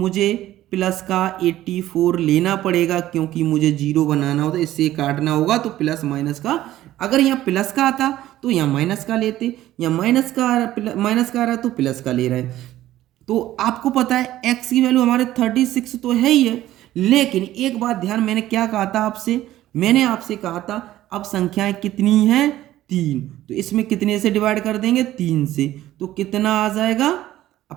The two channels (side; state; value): left; quieter; 14.2 dB